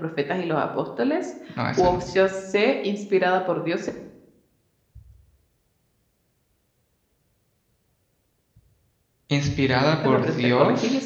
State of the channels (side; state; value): both; identical; correlation 1.00